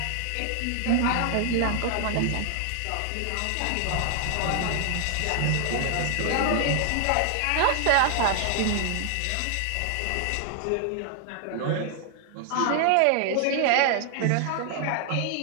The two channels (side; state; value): both; different; correlation 0.00